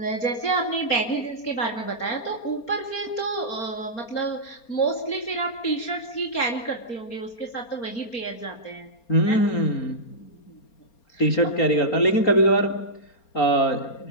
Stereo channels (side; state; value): right; late; 4.3 ms